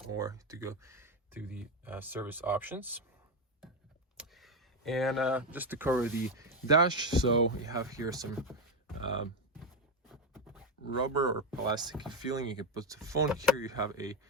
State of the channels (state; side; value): normal; both; correlation 0.10